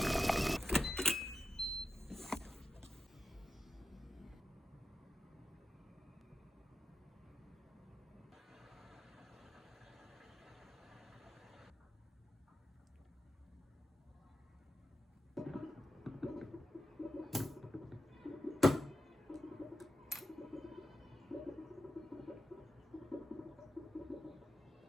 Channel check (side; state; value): both; normal; correlation 0.91